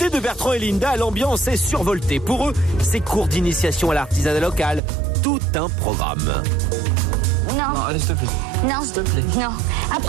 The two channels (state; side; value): drops out; left; at 4.8 s